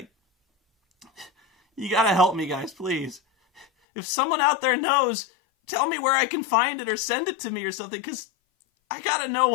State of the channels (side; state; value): right; drops out; at 3.7 s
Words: You gotta help me, guys, please. If someone out there knows, tell me where I can find it or send it to me or something, because I gotta know